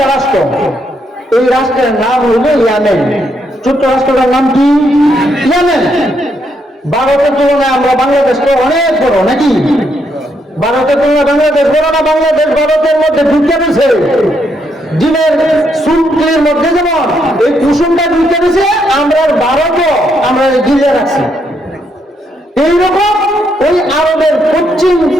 রাষ্ট্র, এই রাষ্ট্রের নাম হইল ইয়ামেন। ছোট্ট রাষ্ট্রটার নাম কি? ইয়ামেন। ভারতের তুলনায় আমরা বাংলাদেশটা অনেক বড় নাকি? ভারতের তুলনায় বাংলাদেশ বড় না? বাংলাদেশ ভারতের মধ্যে ঢুকে দিছে, ডিমের সুপের মধ্যে যেমন এই কুসুমটা ঢুকে দিছে, আমরা ভারতও আমরা গিলে রাখছি। এইরকম ওই আরবের পশ্চিম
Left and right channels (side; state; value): both; normal; correlation 0.76